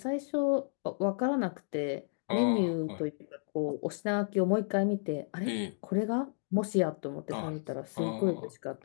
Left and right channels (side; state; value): right; silent; digital silence